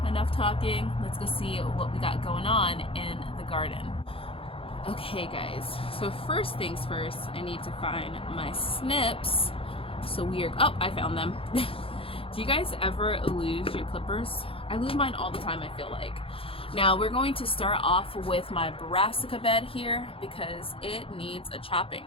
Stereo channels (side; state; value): right; late; 0.27 ms